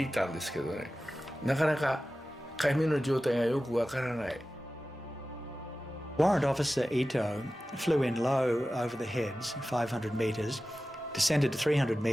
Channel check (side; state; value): both; normal; correlation 0.95